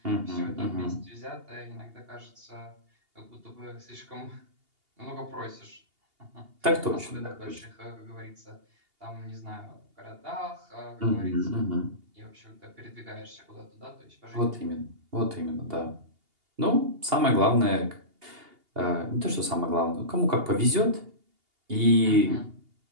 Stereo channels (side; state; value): left; late; 2.8 ms